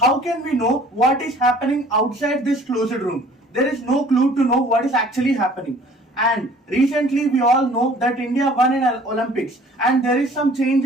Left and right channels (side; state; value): both; normal; correlation 0.52